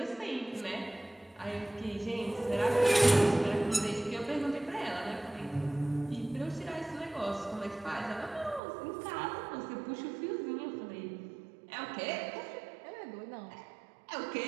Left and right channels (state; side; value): drops out; left; at 8.6 s